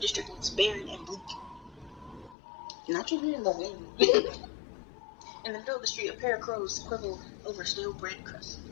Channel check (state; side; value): drops out; right; at 2.4 s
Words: looks barren and bleak. Not even in the wind. In the middle of the street, a pair of crows quibble over stale bread crust.